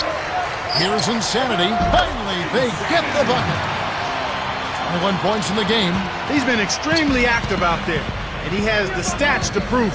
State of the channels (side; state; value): both; identical; correlation 1.00